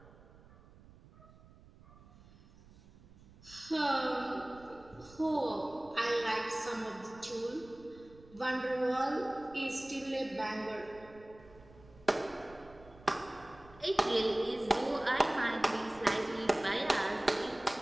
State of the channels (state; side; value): noise; right; rumble, 23 dB below the sound